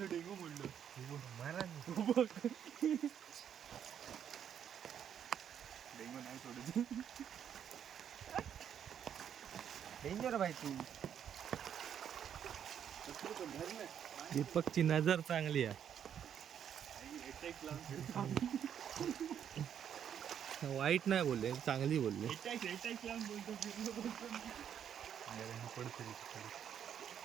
डेंगू म्हणलं डेंगू नाही सोडत. डेंजर भाई तू दीपकची नजर चांगली आहे. वाईट नाही बोलले, चांगली बोलले.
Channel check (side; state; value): left; quieter; 8.9 dB